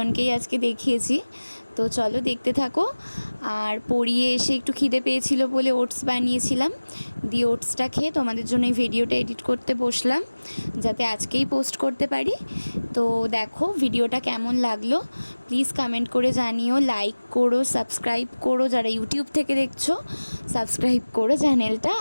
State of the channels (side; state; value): both; inverted; correlation -1.00